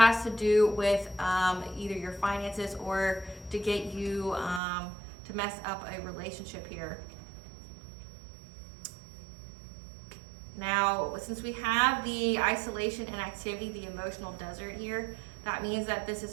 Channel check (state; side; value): drops out; left; at 4.6 s